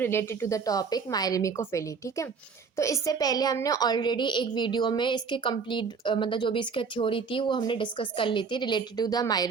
to the topic myrmecophily. ठीक है, तो इससे पहले हमने ऑलरेडी एक वीडियो में इसके कंप्लीट मतलब जो भी इसकी थ्योरी थी वो हमने डिस्कस कर ली थी रिलेटेड टू द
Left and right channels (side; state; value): left; quieter; 5.5 dB